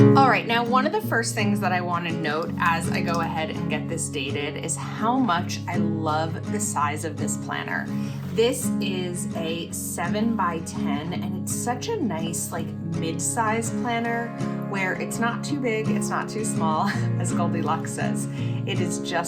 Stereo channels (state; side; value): identical; both; correlation 1.00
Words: All right, now one of the first things that I want to note as I go ahead and get this dated is how much I love the size of this planner. This is a 7x10 and it's such a nice like mid-size planner where it's not too big, it's not too small, as Goldilocks says. It is